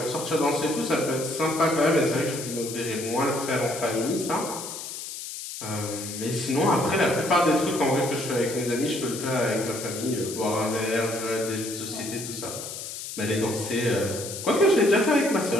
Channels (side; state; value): left; noise; hiss, 8 dB below the sound